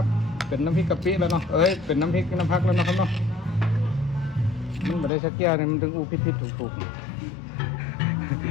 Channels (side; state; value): right; drops out; at 5.1 s